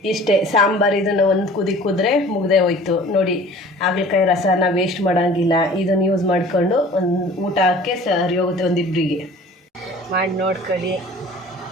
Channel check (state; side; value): normal; both; correlation 0.46